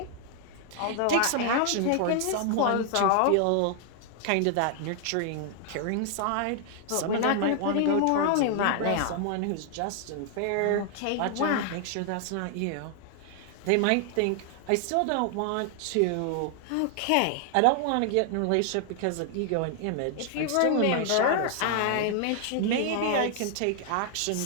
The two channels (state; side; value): different; both; correlation 0.00